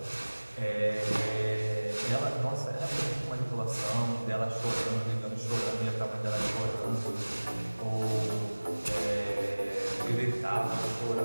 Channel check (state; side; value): inverted; both; correlation -1.00